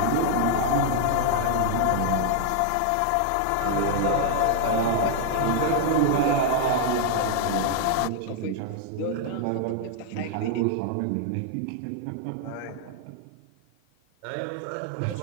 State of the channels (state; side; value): different; both; correlation 0.00